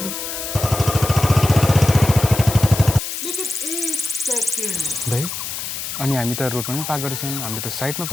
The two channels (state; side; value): noise; left; hiss, 6 dB below the sound